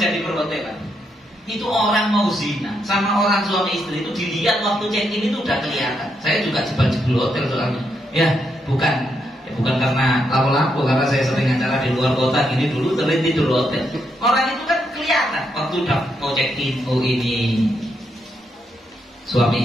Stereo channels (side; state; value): both; normal; correlation 0.79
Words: di perhotelan itu orang mau zina sama orang suami istri itu dilihat waktu check in itu udah kelihatan. Saya juga jebol hotel soalnya. Ya, bukan bukan karena lapo-lapo, karena saya sering acara di luar kota gini dulu sering tidur hotel. Orang itu kan kelihatan waktu udah mau check in, oh ini